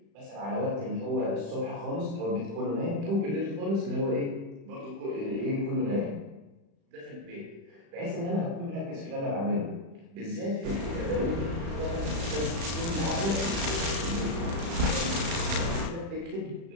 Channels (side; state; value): left; late; 36 ms